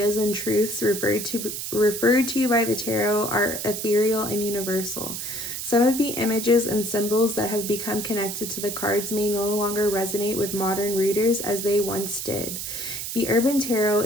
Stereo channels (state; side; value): noise; right; hiss, 5 dB below the sound